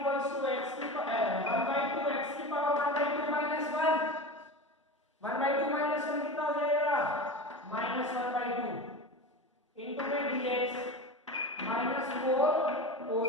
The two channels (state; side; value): normal; both; correlation 0.28